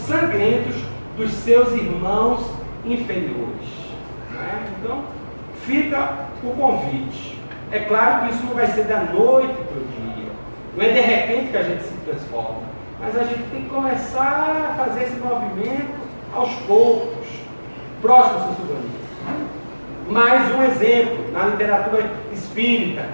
sangrentos dos seus irmãos inferiores. Né? Então, fica o convite. É claro que isso não vai ser da noite para o dia, não é de repente que a gente se transforma, mas a gente tem que começar a fazer esse movimento aos poucos. Próximo, São Silvani. Mais um exemplo na literatura espírita,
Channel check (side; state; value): both; inverted; correlation -1.00